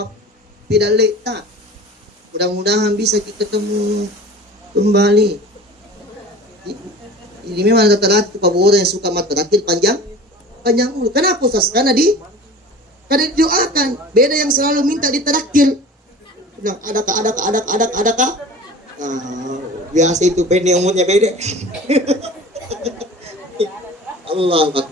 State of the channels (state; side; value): normal; both; correlation 0.39